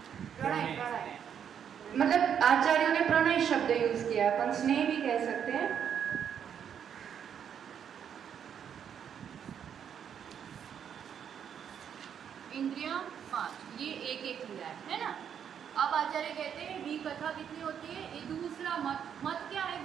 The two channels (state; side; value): quieter; left; 8.4 dB